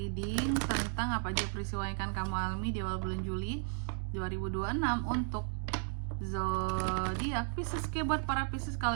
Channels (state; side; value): silent; left; 55 dB below the other